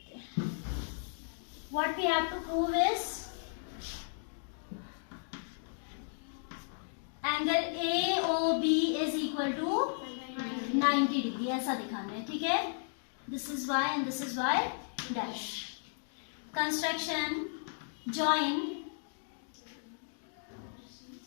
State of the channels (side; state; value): right; silent; digital silence